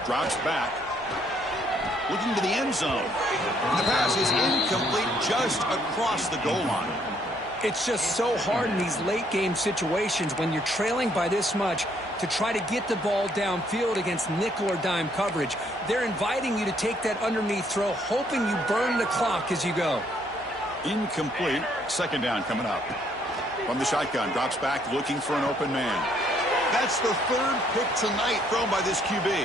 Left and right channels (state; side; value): normal; both; correlation 0.68